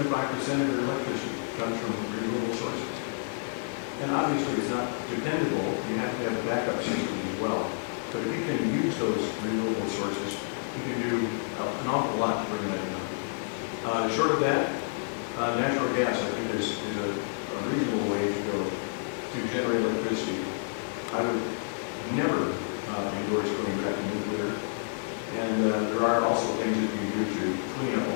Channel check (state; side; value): silent; right; digital silence